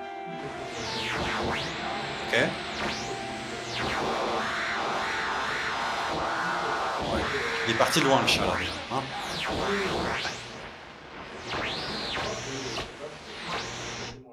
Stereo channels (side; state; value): both; identical; correlation 1.00